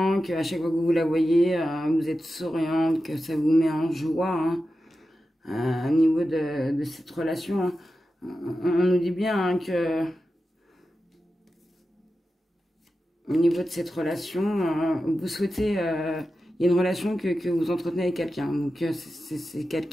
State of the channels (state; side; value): normal; both; correlation 0.92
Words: qu'à chaque fois que vous la voyez, vous êtes souriante, que ça vous met en joie au niveau de cette relation. On nous dit bien que au niveau de cette relation, vous souhaitez, il y a une relation que vous entretenez avec quelqu'un. Donc c'est